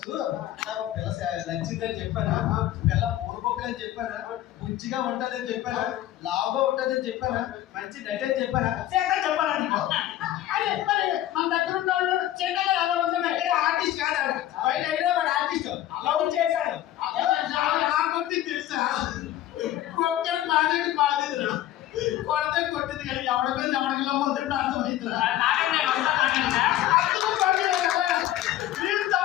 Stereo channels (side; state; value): right; quieter; 13.4 dB